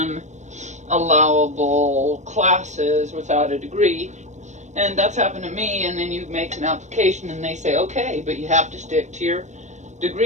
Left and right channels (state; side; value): late; left; 0.34 ms